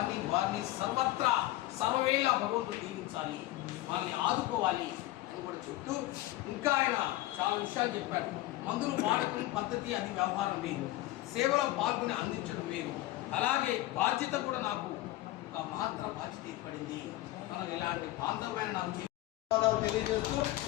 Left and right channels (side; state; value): right; quieter; 16.9 dB